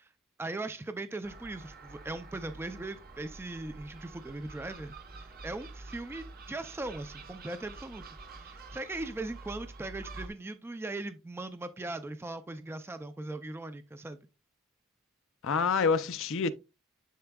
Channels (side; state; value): both; normal; correlation 0.41